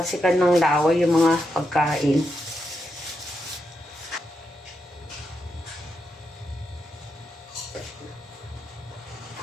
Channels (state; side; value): normal; both; correlation 0.84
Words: ng laway yung mga pagkain.